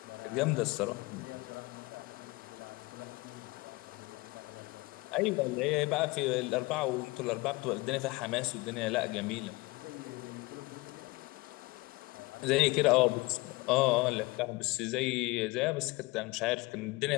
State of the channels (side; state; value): right; quieter; 23.1 dB